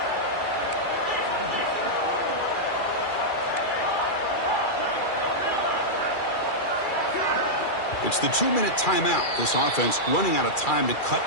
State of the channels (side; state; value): right; late; 2.3 ms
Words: It's the 2-minute timeout. This offense running out of time to